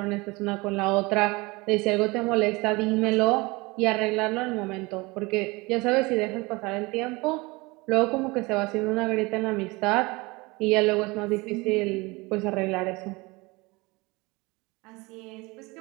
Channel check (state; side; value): quieter; left; 24.2 dB